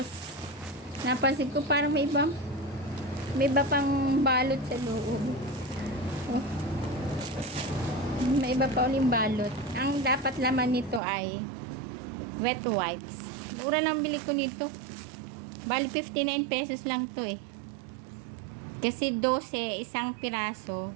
napansin ko parang may iba pang balot sa loob. Oh. May iba pa uling balot. Ang dapat laman nito ay wet wipes. Mura lang bili ko nito. Bali 59 pesos lang to eh. Kasi 12 isang piraso.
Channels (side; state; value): left; drops out; at 11.0 s